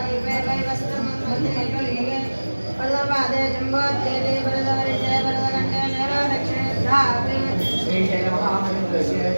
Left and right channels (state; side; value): inverted; both; correlation -1.00